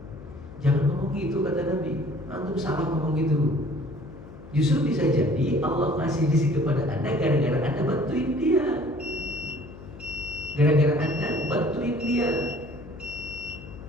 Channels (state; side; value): noise; left; hum, 16 dB below the sound